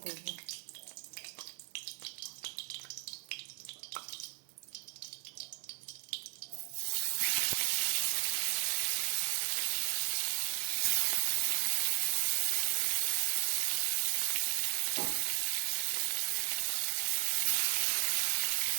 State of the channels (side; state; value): left; silent; 54 dB below the other